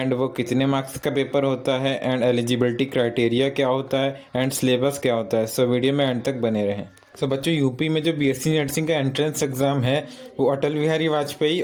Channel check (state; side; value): identical; both; correlation 1.00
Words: वो कितने मार्क्स का पेपर होता है एंड एलिजिबिलिटी क्राइटेरिया क्या होता है एंड सिलेबस क्या होता है। सो वीडियो में एंड तक बने रहें। सो बच्चों, यूपी में जो बीएससी नर्सिंग का एंट्रेंस एग्ज़ाम है वो अटल बिहारी वाजपेयी